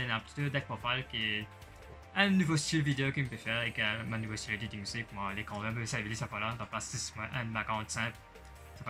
y a un petit deck profile qui est un nouveau style vidéo qu'il me peut faire et un nouveau style editing aussi. Moi, l'écran même, ça veut dire ça pas là, dans place 6, un background simple. C'est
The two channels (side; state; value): both; identical; correlation 1.00